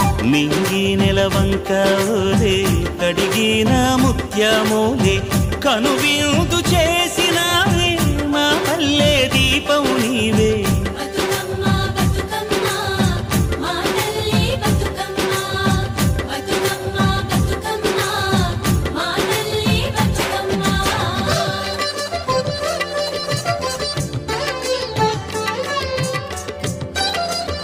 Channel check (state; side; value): identical; both; correlation 1.00